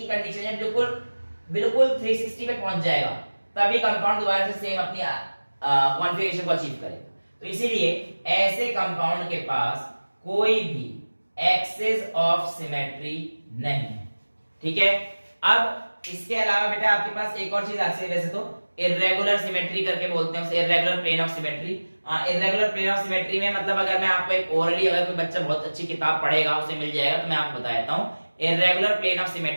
कंडीशन है, बिल्कुल 360 पे पहुंच जाएगा, तभी कंपाउंड दोबारा से सेम अपनी कॉन्फ़िगरेशन को अचीव करेगा। तो इसीलिए ऐसे कंपाउंड के पास कोई भी एक्सिस ऑफ सिमेट्री नहीं है, ठीक है। अब इसके अलावा बेटा आपके पास एक और चीज आती है, वैसे तो इर्रेगुलर सिमेट्री करके बोलते हैं उसे, irregular plane of symmetry. Irregular plane of symmetry में मतलब अगर मैं आपको एक ओरली, अगर कोई बच्चा बहुत अच्छी किताब पढ़ेगा उसे मिल जाएगा, तो मैं आपको बता देता हूं। इर्रेगुलर प्लेन ऑफ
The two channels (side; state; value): both; inverted; correlation -1.00